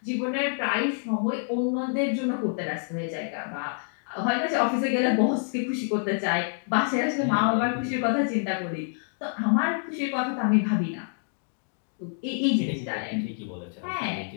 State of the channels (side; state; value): right; silent; 60 dB below the other